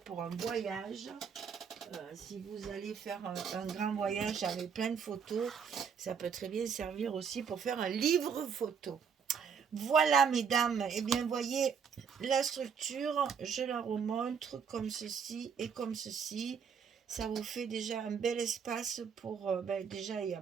un voyage. Si vous allez faire un grand voyage avec plein de photos, ça peut très bien servir aussi pour faire un livre photo. Voilà, mesdames, et bien voyez la structure, je la remontre comme ceci et comme ceci. Ça vous fait déjà un bel espace pour... déjà, il y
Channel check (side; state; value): left; quieter; 6.6 dB